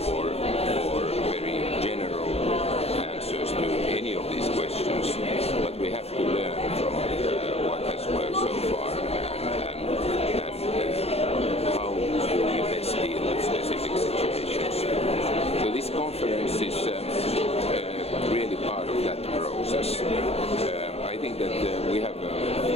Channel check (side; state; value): right; late; 0.29 ms